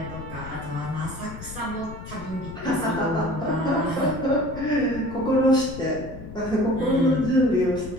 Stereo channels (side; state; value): left; noise; rumble, 12 dB below the sound